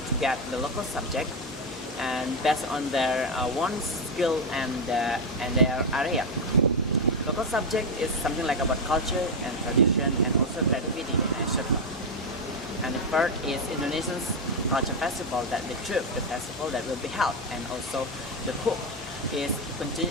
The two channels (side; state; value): both; normal; correlation 0.06